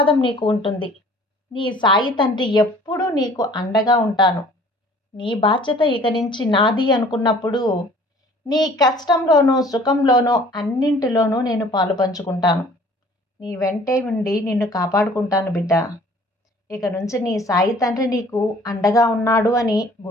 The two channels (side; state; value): both; normal; correlation 0.52